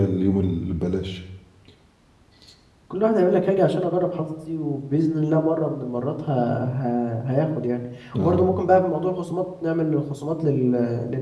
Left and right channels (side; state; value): both; identical; correlation 1.00